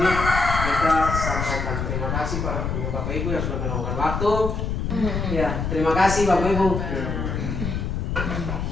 kita sampaikan terima kasih para Bapak Ibu yang sudah meluangkan waktu. Ya, terima kasih Bapak Ibu.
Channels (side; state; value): left; noise; rumble, 2 dB below the sound